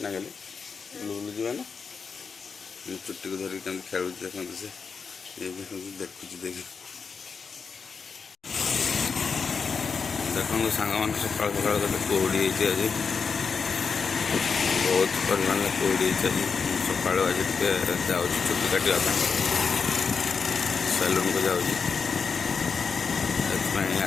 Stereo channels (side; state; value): right; quieter; 5.5 dB